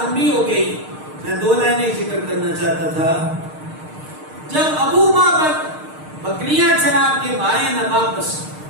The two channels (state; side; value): late; left; 6.5 ms